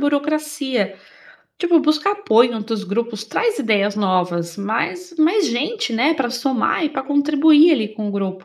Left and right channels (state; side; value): identical; both; correlation 1.00